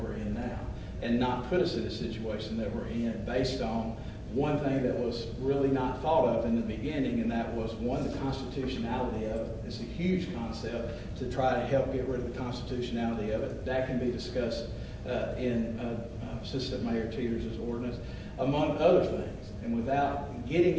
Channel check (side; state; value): both; identical; correlation 1.00